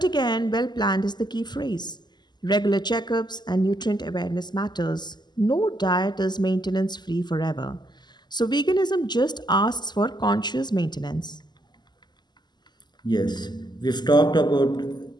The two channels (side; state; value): right; late; 0.21 ms